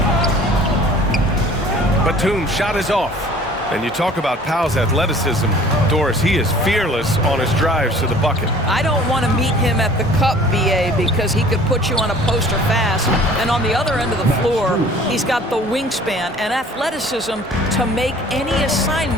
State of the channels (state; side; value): normal; both; correlation 0.50